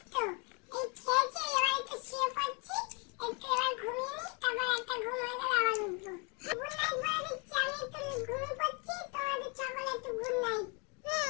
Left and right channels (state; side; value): quieter; right; 33.1 dB